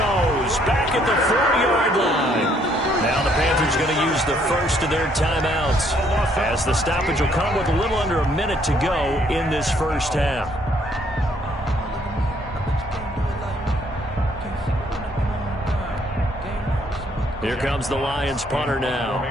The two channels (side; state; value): both; normal; correlation 0.67